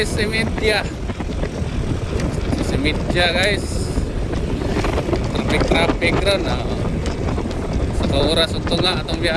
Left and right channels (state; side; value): identical; both; correlation 1.00